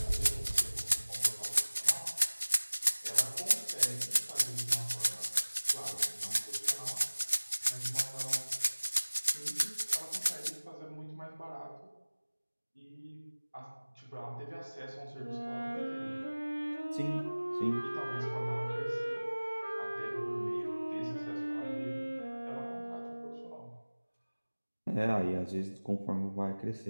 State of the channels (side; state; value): both; inverted; correlation -1.00